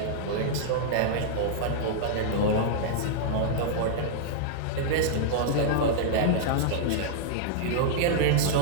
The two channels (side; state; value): both; different; correlation -0.01